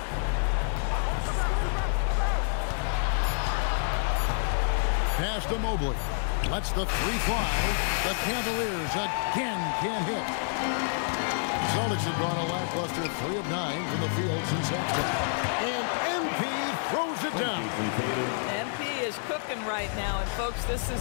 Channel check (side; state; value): right; silent; 59 dB below the other